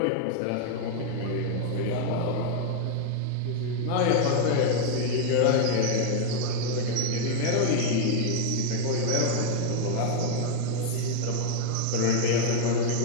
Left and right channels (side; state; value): both; different; correlation 0.00